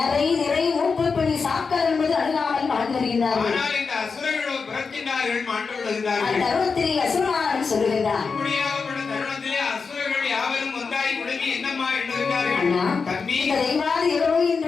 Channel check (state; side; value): quieter; right; 5.0 dB